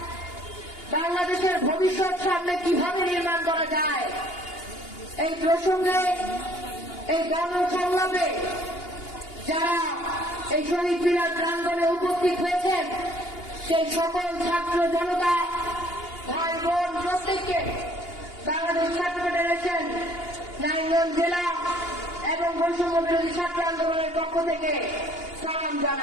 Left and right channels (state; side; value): late; right; 2.8 ms